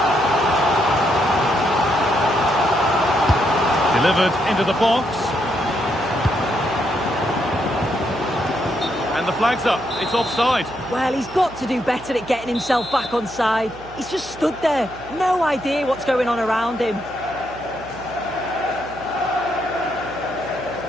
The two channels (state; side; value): noise; right; hum, 19 dB below the sound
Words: Delivered into the box. And the flag's up. It's offside. Well, he's got to do better at getting himself back on side. He's just stood there. No idea what's going on around him.